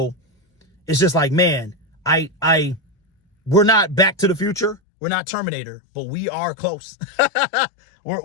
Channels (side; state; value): right; drops out; at 4.8 s